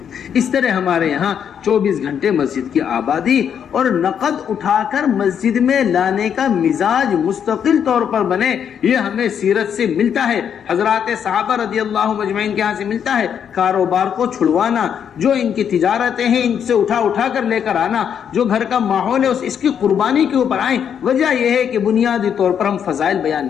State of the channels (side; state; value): right; quieter; 8.2 dB